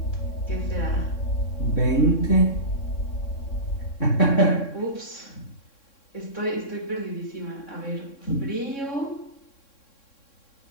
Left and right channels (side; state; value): right; late; 3.6 ms